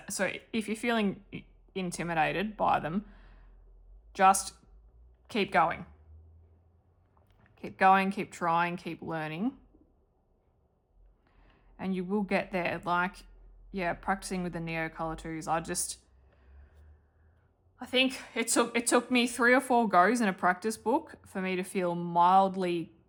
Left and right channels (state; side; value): identical; both; correlation 1.00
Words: if you're feeling intimidated by them, just keep going. Keep going, keep trying, keep learning. And you will get there. Like, yeah, practicing with the Neo Color 2s, I think it took me 3 or 4 goes in a practice book for me to feel mildly